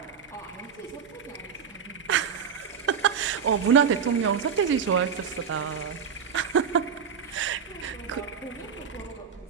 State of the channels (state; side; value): quieter; left; 7.1 dB